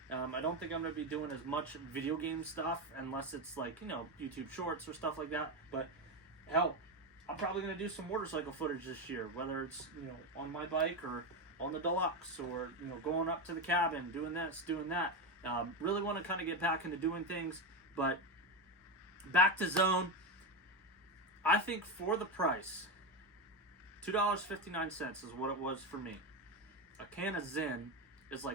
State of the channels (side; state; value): both; normal; correlation 0.13